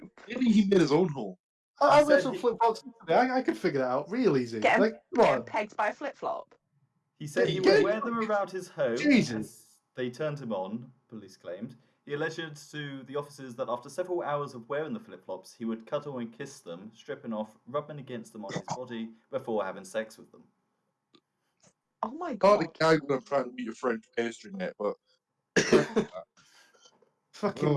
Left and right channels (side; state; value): both; identical; correlation 1.00